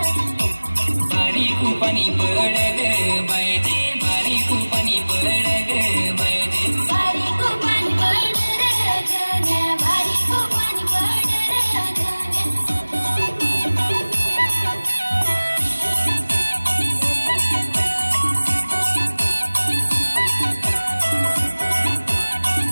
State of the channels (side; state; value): both; inverted; correlation -1.00